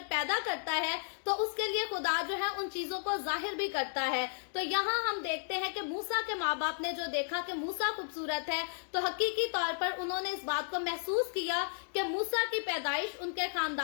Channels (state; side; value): silent; right; digital silence